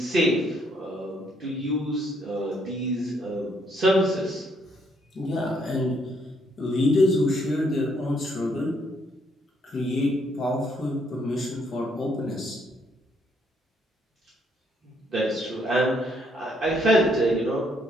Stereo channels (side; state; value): both; normal; correlation 0.71